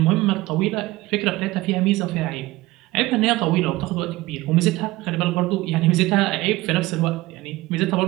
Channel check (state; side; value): quieter; left; 19.1 dB